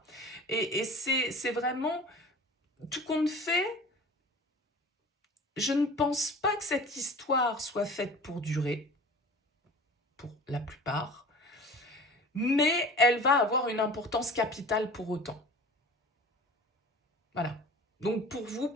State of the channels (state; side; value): normal; both; correlation 0.41